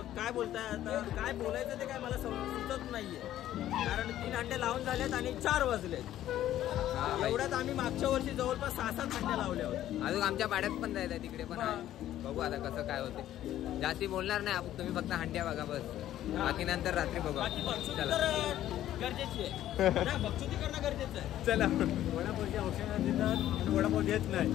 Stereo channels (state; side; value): quieter; right; 12.7 dB